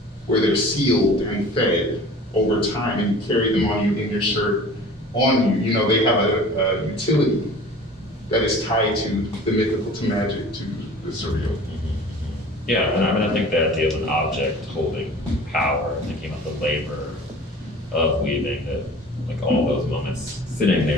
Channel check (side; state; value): both; normal; correlation 0.43